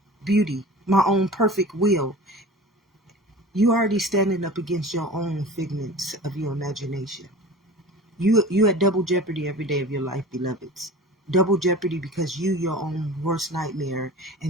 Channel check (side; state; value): both; normal; correlation 0.38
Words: beauty, my own perfect will. You already standing up against your own figments of your imagination. You at double jeopardy every day of your life, beloveds. Double jeopardy because you your own worst nightmare,